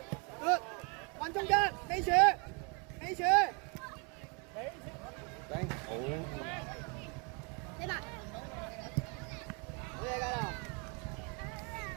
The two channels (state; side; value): quieter; left; 33.6 dB